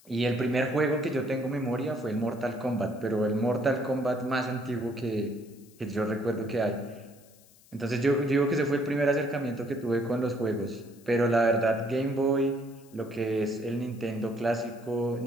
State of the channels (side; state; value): left; noise; hiss, 27 dB below the sound